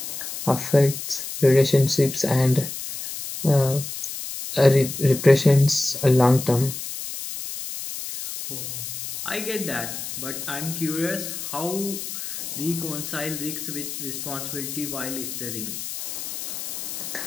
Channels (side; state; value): left; noise; hiss, 7 dB below the sound